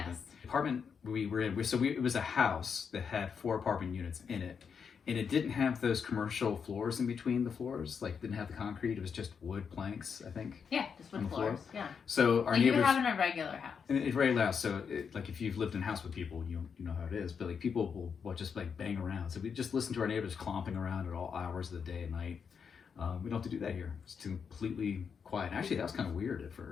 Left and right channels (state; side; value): quieter; right; 6.5 dB